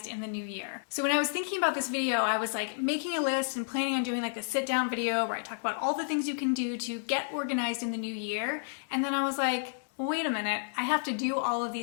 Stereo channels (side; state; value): right; silent; digital silence